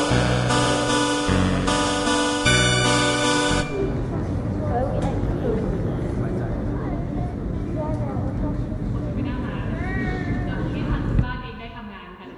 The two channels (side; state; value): both; identical; correlation 1.00